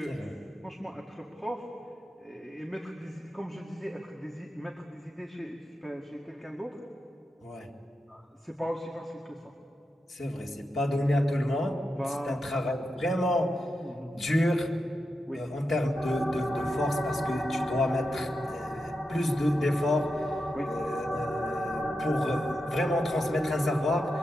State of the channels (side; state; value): both; normal; correlation 0.88